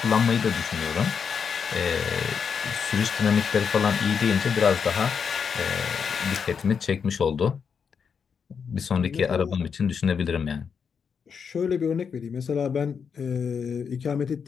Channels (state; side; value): quieter; right; 6.5 dB